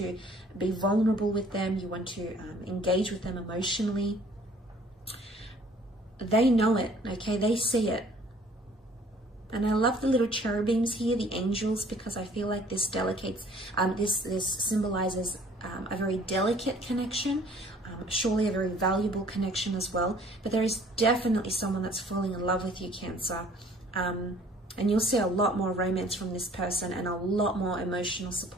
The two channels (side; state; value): both; normal; correlation 0.55